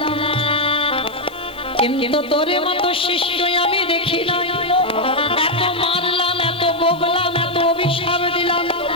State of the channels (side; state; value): left; noise; hiss, 26 dB below the sound